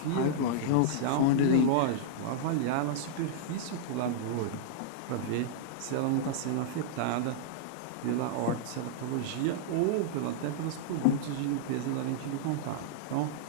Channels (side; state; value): both; different; correlation -0.01